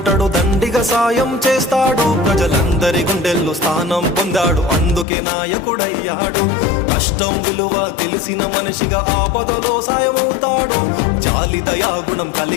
దండిగా సాయం చేస్తాడు. ప్రజలందరి గుండెల్లో స్థానం పొందాడు, అందుకే నాయకుడయ్యాడు. కష్టం విలువ తెలిసిన మనిషిగా ఆపదలో సాయమవుతాడు. జాలి దయాగుణం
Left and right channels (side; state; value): right; drops out; at 5.1 s